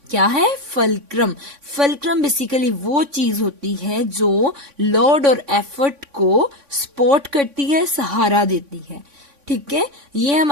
क्या है? फलक्रम. फलक्रम बेसिकली वो चीज होती है जो लोड और एफर्ट को सपोर्ट करती है, सहारा देती है. ठीक है, ये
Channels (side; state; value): left; late; 3.5 ms